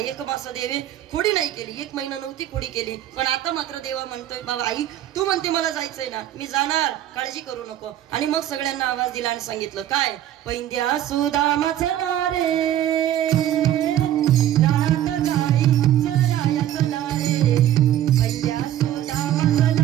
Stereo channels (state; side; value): quieter; left; 12.0 dB